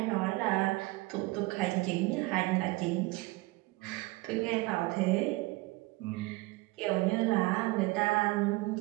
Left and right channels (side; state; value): left; quieter; 22.4 dB